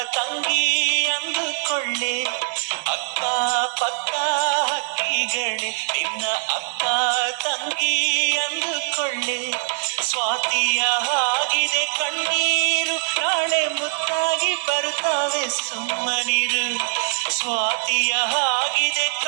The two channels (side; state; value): left; silent; digital silence